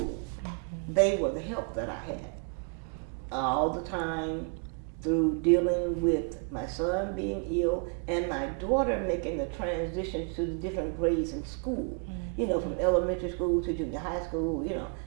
They were the help that I had all the time through dealing with my son being ill and my daughter making the transition to the different grades in school, you know, from elementary school to junior high school, you know.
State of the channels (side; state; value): left; quieter; 38.9 dB